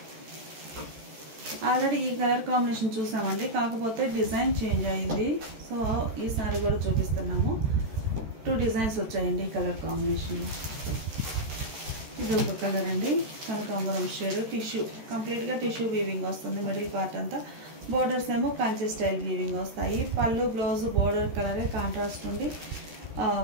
ఆల్రెడీ ఈ కలర్ కాంబినేషన్ చూసామండి, కాకపోతే డిజైన్ చేంజ్ అయింది. సో ఈ సారీ కూడా చూపిస్తున్నాము. 2 డిజైన్స్ వచ్చాయండి ఈ కలర్ కాంబినేషన్. ఇది ఒక కలర్ అండి, కనకాంబరం షేడ్. టిష్యూ కంప్లీట్గా టిష్యూ వీవింగ్ వస్తుంది మిడిల్ పార్ట్ అంతా. బోర్డర్స్ ఏమో కంచి స్టైల్ వీవింగ్ వస్తాయి. పళ్ళు బ్లౌజ్ బోర్డర్ కలరే కాంట్రాస్ట్ ఉంది.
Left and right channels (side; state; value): left; late; 13 ms